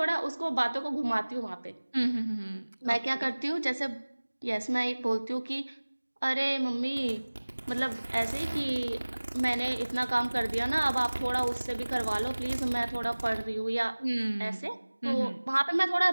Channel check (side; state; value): both; inverted; correlation -1.00